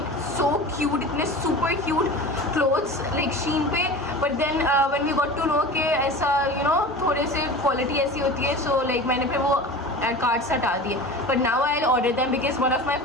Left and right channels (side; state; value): both; normal; correlation 0.34